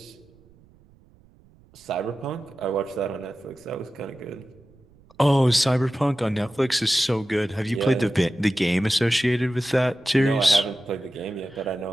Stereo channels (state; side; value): noise; right; rumble, 28 dB below the sound